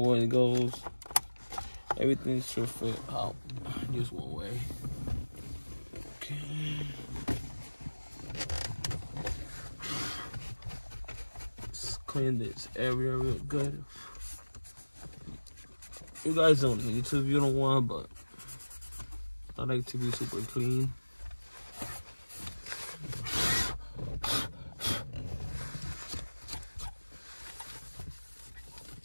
it goes. Everything should fit out just one way. Okay. Let's clean this area real good. You guys don't need to if you don't want, but I like to be super clean.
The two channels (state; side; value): inverted; both; correlation -1.00